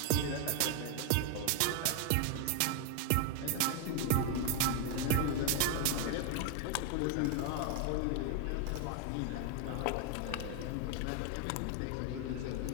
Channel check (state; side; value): different; both; correlation 0.01